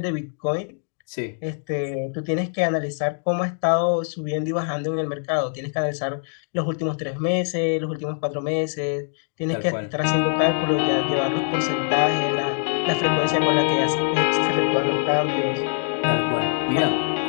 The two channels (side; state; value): right; silent; 62 dB below the other